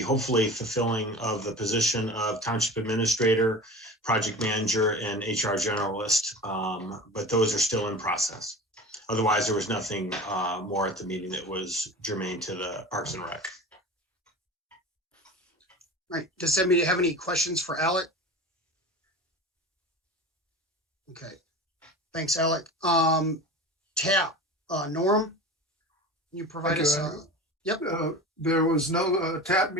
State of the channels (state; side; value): normal; both; correlation 0.34